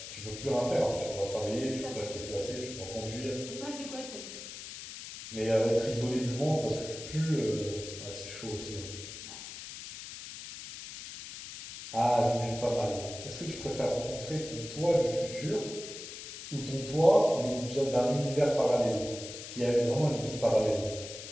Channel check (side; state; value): left; noise; hiss, 11 dB below the sound